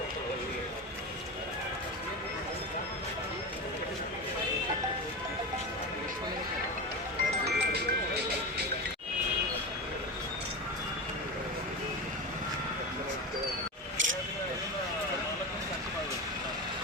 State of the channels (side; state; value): both; normal; correlation 0.22